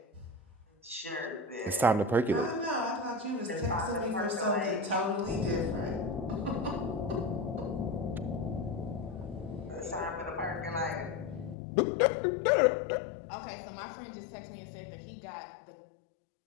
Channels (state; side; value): drops out; right; at 11.6 s